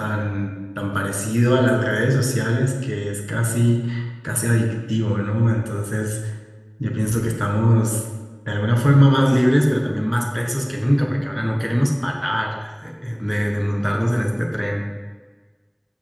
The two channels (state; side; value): identical; both; correlation 1.00